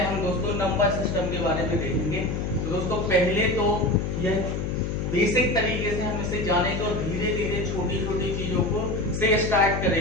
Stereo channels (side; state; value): left; noise; hum, 2 dB below the sound